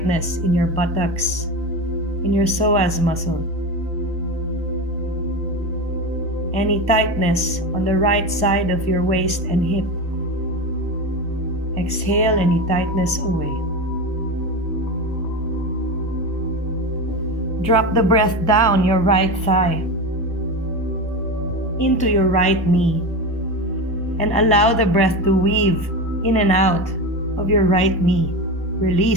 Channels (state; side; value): normal; both; correlation 0.22